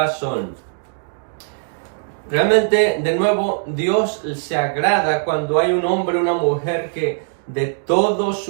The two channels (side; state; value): left; silent; digital silence